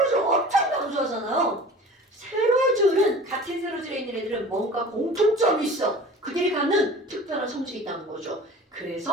엄청 강조하잖아요. 세로줄은 같은 세로줄에 있는 애들은 뭔가 공통점이 있어. 그들이 갖는 특별한 성질이 있다는 거죠.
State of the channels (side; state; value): both; normal; correlation 0.41